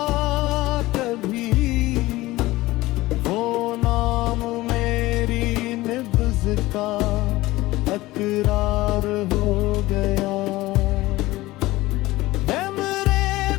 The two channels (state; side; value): quieter; right; 18.6 dB